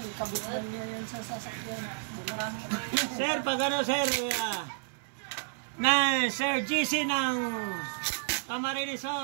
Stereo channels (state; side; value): silent; left; digital silence